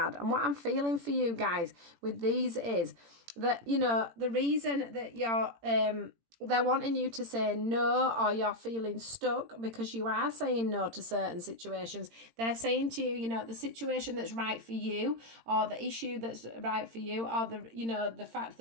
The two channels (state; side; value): late; left; 18 ms